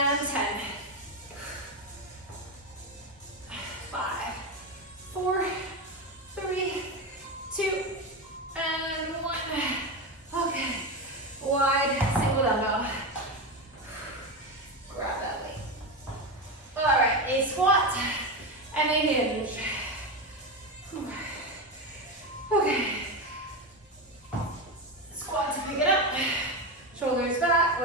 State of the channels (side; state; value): both; normal; correlation 0.16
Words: 10. 5, 4, 3, 2, and 1. Okay. Wide single dumbbell. Grab that weight. All right, a squat and a hinge. Okay. Squat to pick it up. Shoulders back.